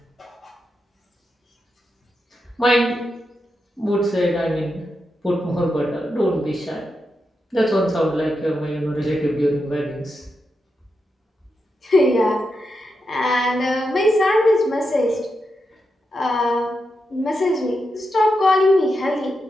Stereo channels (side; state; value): both; normal; correlation 0.86